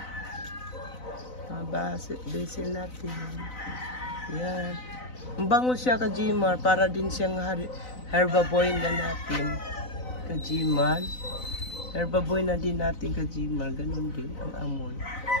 Mga basil natin. Yan. Ang bango siya, Kajimar. Para din siyang herbaboy na natin. Kajimar. Herbaboy na din natin, Kajimar. Ganon din ang amoy.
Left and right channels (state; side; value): late; right; 4.0 ms